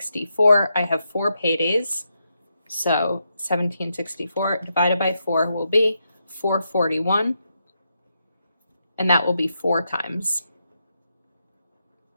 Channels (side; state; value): both; inverted; correlation -0.83